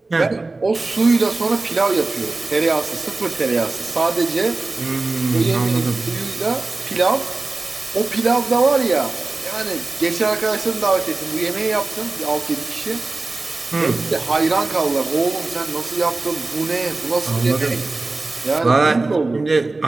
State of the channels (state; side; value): quieter; left; 3.3 dB